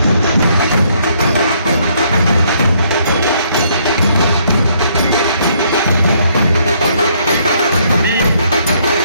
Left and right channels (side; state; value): both; inverted; correlation -0.69